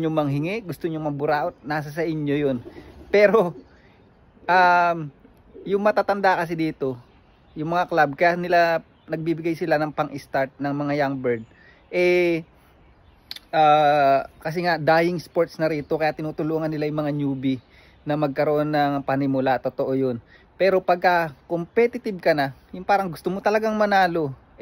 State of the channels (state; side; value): identical; both; correlation 1.00